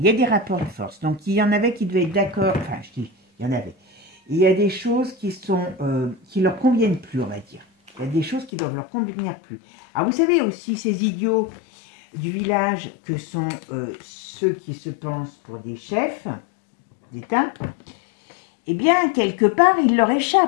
y a des rapports de force. Donc, il y en avait qui devaient être d'accord. Enfin, je dis, il y en avait. Il y a des choses qui leur conviennent plus, on va dire. Il y a des choses qui doivent leur convenir plus. Alors, vous savez aussi, ces idiots du village que sont ceux qui se pensent pour des chefs d'État, eh bien, quelque part, ils leur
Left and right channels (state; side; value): drops out; right; at 8.5 s